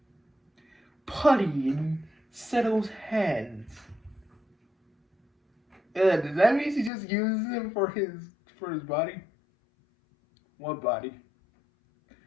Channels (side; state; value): right; drops out; at 6.9 s